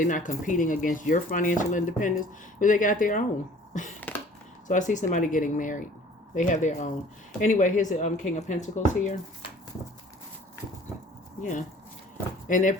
not competing against your financial independence, but they got their own. So I see somebody getting married. They have their own. Anyway, here's the King of Pentacles here. Yeah. And they're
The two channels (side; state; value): both; normal; correlation 0.51